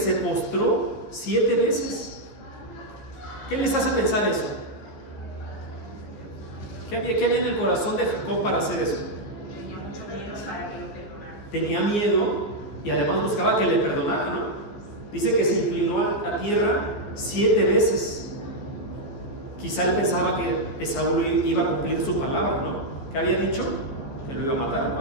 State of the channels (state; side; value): late; right; 14 ms